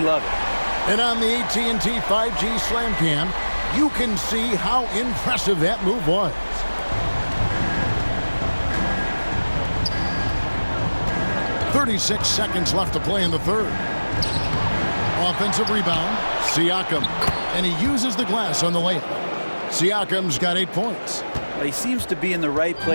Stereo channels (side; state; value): both; inverted; correlation -1.00